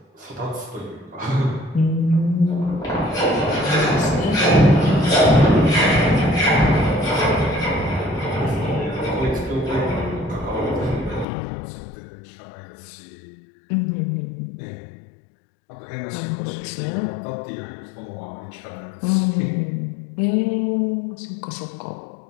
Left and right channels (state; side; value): drops out; right; at 11.2 s